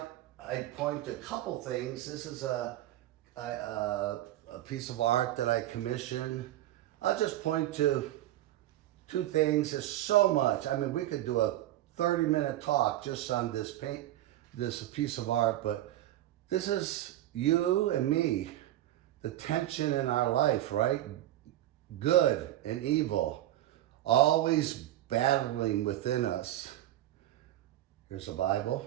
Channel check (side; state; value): left; quieter; 14.1 dB